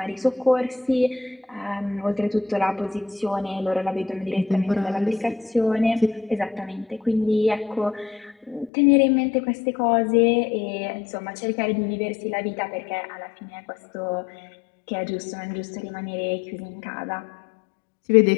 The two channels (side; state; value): right; drops out; at 8.7 s